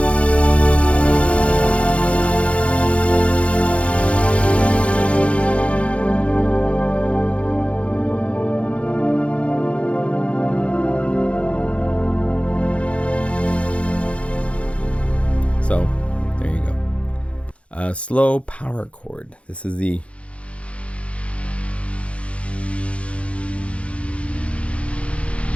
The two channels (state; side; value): late; right; 0.062 ms